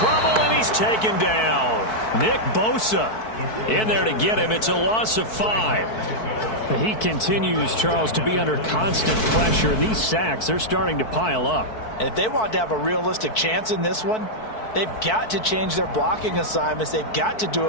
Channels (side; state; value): right; late; 4.6 ms